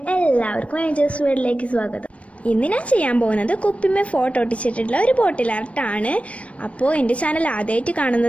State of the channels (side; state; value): right; late; 0.063 ms